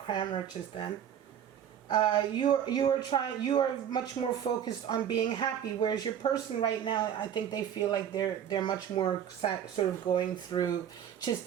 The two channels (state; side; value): quieter; left; 9.2 dB